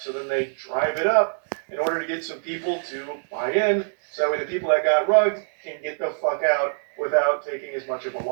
then they drive it up in order to get some people to buy in, so that way the people that got rugged can get the fuck out without taking as much of a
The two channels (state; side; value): silent; left; digital silence